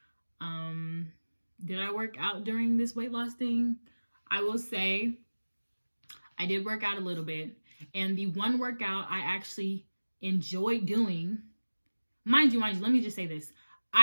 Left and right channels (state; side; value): inverted; both; correlation -1.00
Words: Did I work out during this weight loss thing? I will say I did work out a little bit. And the one workout I actually enjoyed doing, mind you, let me just say this.